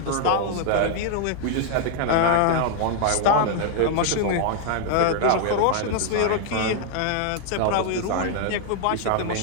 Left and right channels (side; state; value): both; different; correlation 0.00